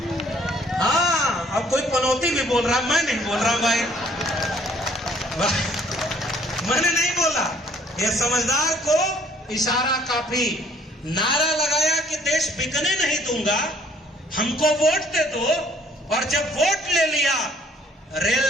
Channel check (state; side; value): normal; both; correlation 0.60